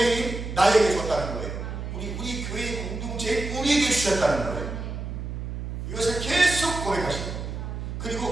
나에게 줬다는 거예요. 우리 교회의 공동체에 우리에게 주셨다는 거예요. 이것을 계속 고백하시는 거예요.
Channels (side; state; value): right; noise; hum, 6 dB below the sound